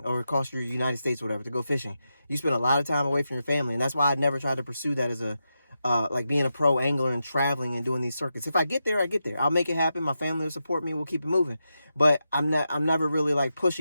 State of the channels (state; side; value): inverted; both; correlation -0.88